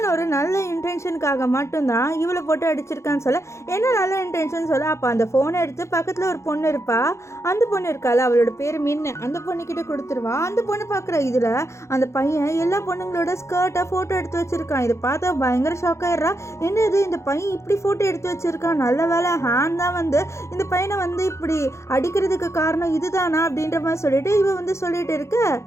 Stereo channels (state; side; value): late; right; 0.14 ms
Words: ஒரு நல்ல இன்டென்ஷனுக்காக மட்டும்தான் இவளை போட்டு அடிச்சிருக்கான்னு சொல்ல, என்ன நல்ல இன்டென்ஷன் சொல்ல, அப்போ அந்த ஃபோனை எடுத்து பக்கத்தில் ஒரு பொண்ணு இருப்பா, அந்த பொண்ணு இருக்கால அவளோட பேர் மின்னு, அந்த பொண்ணுக்கிட்ட கொடுத்துருவா. அந்த பொண்ணு பார்க்குற இதில் அந்த பையன் எல்லா பொண்ணுங்களோட ஸ்கர்ட்டை ஃபோட்டோ எடுத்து வச்சிருக்கான். இதை பார்த்தா பயங்கர ஷாக் ஆயிடுறா. என்னது இந்த பையன் இப்படி ஃபோட்டோ எடுத்து வச்சிருக்கான், நல்ல வேலை ஹேன் தான் வந்து இந்த பையனை வந்து இப்படி அடிக்கிறதுக்கு காரணம் இதுதானா அப்படின்ற மாதிரி சொல்லிட்டு இவ வந்து சொல்லிட்டு இருக்க,